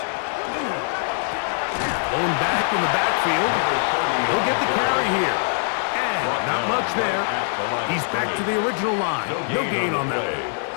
Going back in the backfield. He'll get the carry here. And not much there. He's back to the original line. No gain on that.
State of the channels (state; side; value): silent; right; digital silence